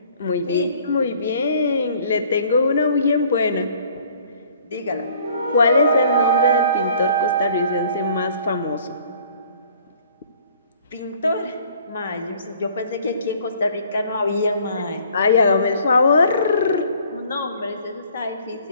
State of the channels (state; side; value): inverted; both; correlation -0.57